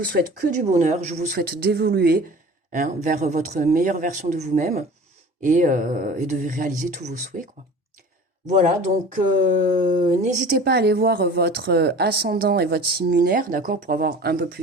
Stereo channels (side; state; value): both; normal; correlation 0.41